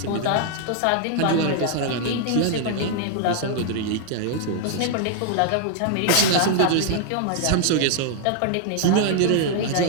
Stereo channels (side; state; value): both; different; correlation 0.00